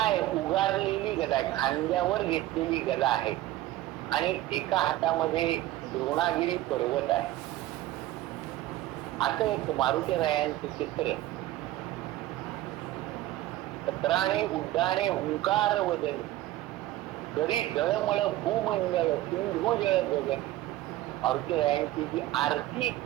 उगारलेली गदा आहे, खांद्यावर घेतलेली गदा आहे आणि एका हातामध्ये द्रोणागिरी पर्वत आहे, असं एक मारुती रायांचं चित्र. सत्राणे उड्डाणे हुंकार वदनी करी जळमळ भूमंडळ सिंधू जळ गगन. मारुती रायांची जी आरती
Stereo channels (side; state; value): left; quieter; 15.4 dB